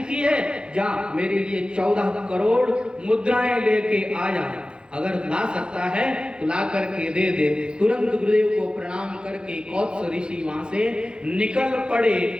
है, जा मेरे लिए 14 करोड़ मुद्राएं लेके आ जा, अगर ला सकता है तो ला करके दे दे। तुरंत गुरुदेव को प्रणाम करके कोत्स ऋषि वहां से निकल पड़े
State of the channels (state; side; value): late; left; 0.050 ms